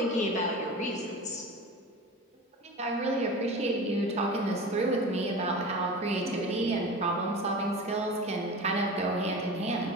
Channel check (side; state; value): both; normal; correlation 0.33